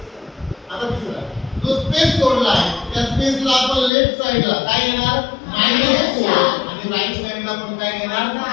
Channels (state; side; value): drops out; right; at 3.9 s